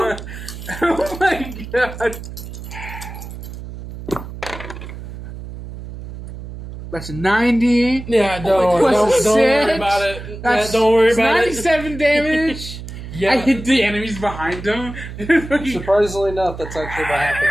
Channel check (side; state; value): right; noise; hum, 11 dB below the sound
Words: Oh my god. That's a 90. Yeah, Plus don't worry 6. about it. That's Don't worry about 97 damage. Yeah. I hit the enemies behind him. Surprisingly enough, that's actually what